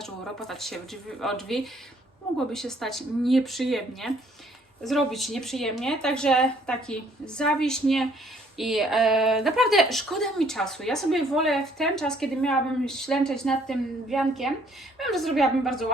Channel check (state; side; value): normal; both; correlation 0.63